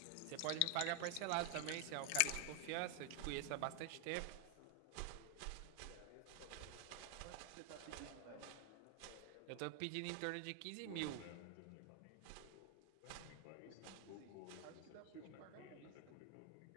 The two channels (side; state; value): both; different; correlation 0.00